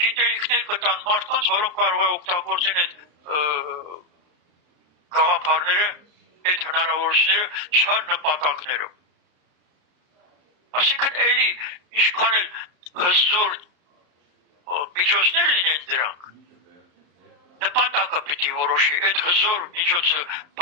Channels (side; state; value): left; late; 34 ms